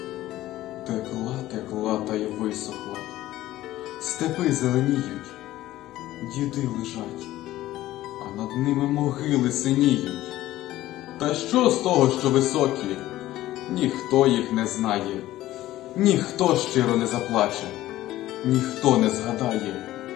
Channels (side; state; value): right; quieter; 15.3 dB